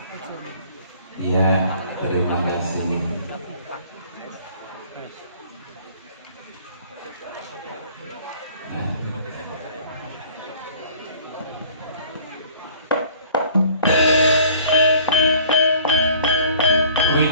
Ya, terima kasih.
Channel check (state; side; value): inverted; both; correlation -0.51